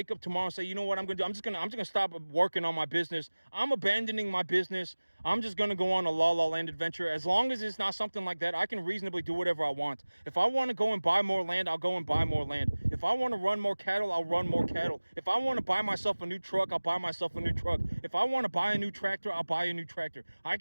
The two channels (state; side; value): inverted; both; correlation -1.00